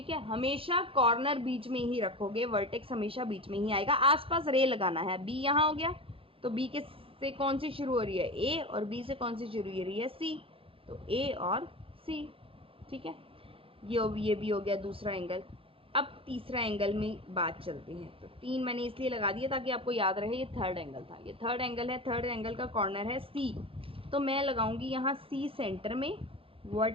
है। हमेशा कॉर्नर बीच में ही रखोगे, वर्टेक्स हमेशा बीच में ही आएगा, आसपास रे लगाना है। बी यहाँ हो गया तो बी के से कौन सी शुरू हो रही है, ए, और बी से कौन सी शुरू हो रही है, सी, तो ए और सी, ठीक है। ये भी हो गया दूसरा एंगल। अब तीसरा एंगल में बात चलती है। तो 3 मैंने इसलिए लगा दिया ताकि आपको याद रहे ये थर्ड एंगल था। ये थर्ड एंगल है, थर्ड एंगल का कॉर्नर है सी। तो मैं लगाऊंगी यहाँ सी सेंटर में,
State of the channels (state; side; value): late; left; 0.27 ms